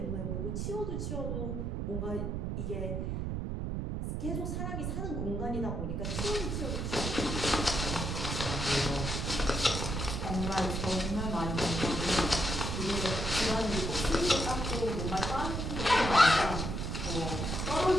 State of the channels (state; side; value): noise; right; rumble, 2 dB below the sound